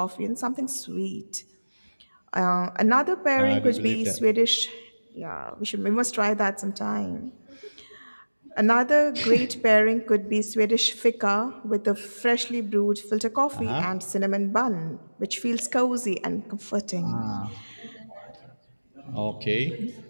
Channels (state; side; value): inverted; both; correlation -1.00